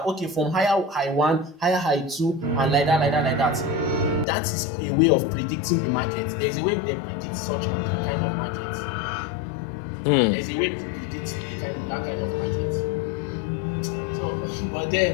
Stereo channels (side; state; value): right; drops out; at 4.2 s